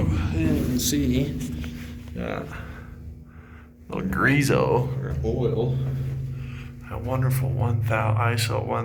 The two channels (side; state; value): both; identical; correlation 1.00